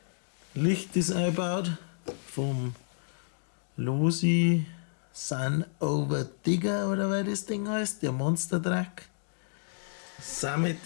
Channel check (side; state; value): right; silent; digital silence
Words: Licht ist eingebaut vom Losi Sun Over Digger oder wie das Ding heißt, der Monster Truck.